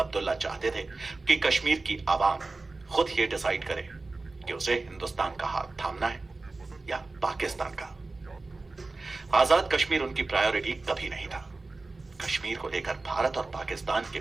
चाहते थे कि कश्मीर की आवाम खुद ये डिसाइड करे कि उसे हिंदुस्तान का हाथ थामना है या पाकिस्तान का। आजाद कश्मीर उनकी प्रायोरिटी कभी नहीं था। कश्मीर को लेकर भारत और पाकिस्तान के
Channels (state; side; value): quieter; left; 3.4 dB